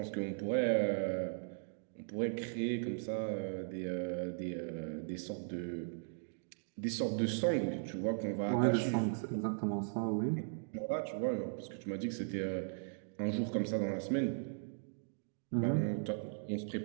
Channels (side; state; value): left; silent; digital silence